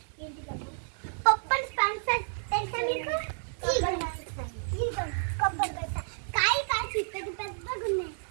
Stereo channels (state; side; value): silent; left; digital silence